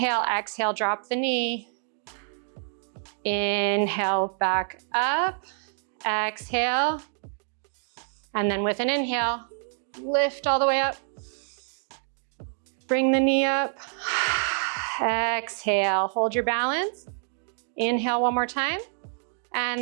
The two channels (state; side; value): silent; left; digital silence